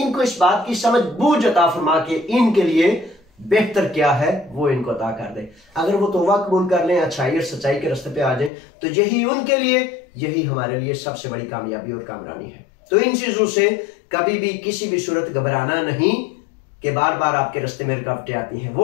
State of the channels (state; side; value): drops out; right; at 8.5 s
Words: इस बात की समझ बूझ अता फरमा कि इनके लिए बेहतर क्या है वो इनको अता कर दे। अगर वो तौबा कबूल कर लें, अच्छाई और सच्चाई के रास्ते पे आ जाए, तो यही उनके लिए, यही हमारे लिए सबसे बड़ी कामयाबी और कामरानी है। तो इन चीजों से कभी भी किसी भी सूरत घबराना नहीं कि बार बार आपके रास्ते में रुकावटें आती हैं।